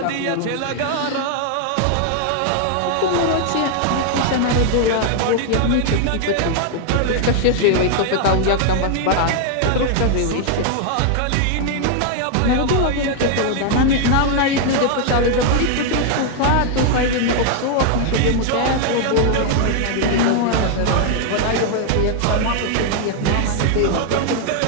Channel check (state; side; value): different; both; correlation 0.00